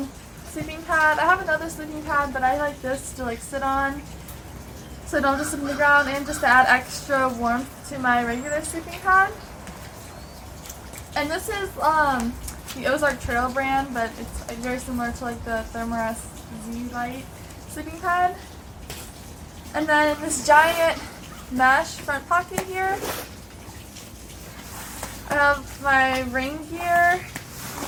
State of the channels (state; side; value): identical; both; correlation 1.00